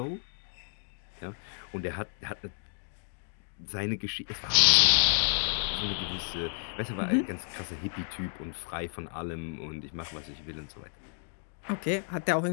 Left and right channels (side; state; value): right; silent; digital silence